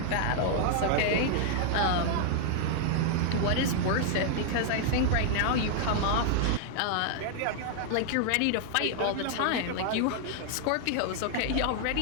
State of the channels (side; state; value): both; different; correlation 0.00